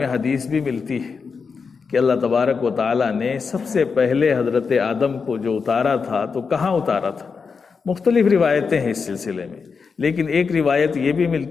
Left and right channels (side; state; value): right; quieter; 5.3 dB